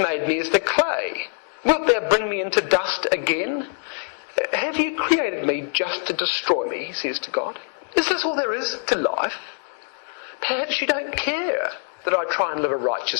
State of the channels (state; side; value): silent; right; 58 dB below the other